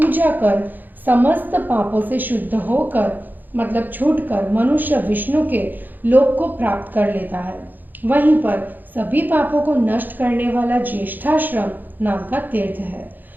कर समस्त पापों से शुद्ध होकर मतलब छूटकर मनुष्य विष्णु के लोक को प्राप्त कर लेता है। वहीं पर सभी पापों को नष्ट करने वाला ज्येष्ठाश्रम नाम का तीर्थ है।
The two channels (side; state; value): left; late; 0.087 ms